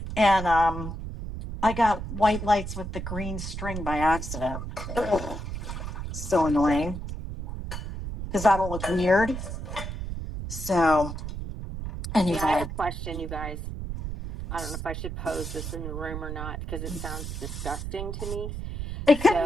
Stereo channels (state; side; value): noise; right; rumble, 6 dB below the sound